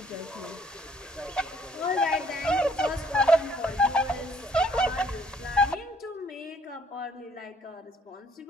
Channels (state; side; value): normal; both; correlation 0.63